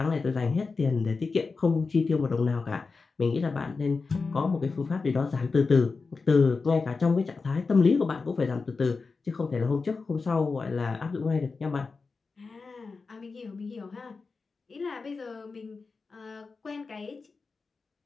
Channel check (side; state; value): right; quieter; 4.4 dB